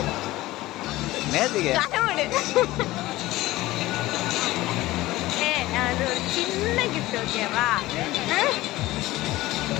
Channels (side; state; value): right; quieter; 17.7 dB